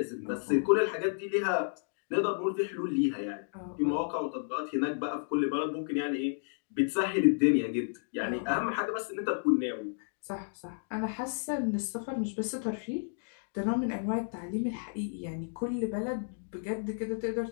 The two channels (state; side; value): silent; right; digital silence